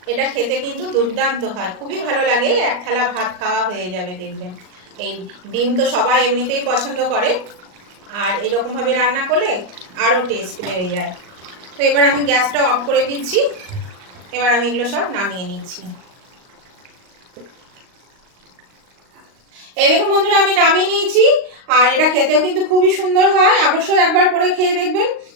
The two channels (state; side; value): late; left; 38 ms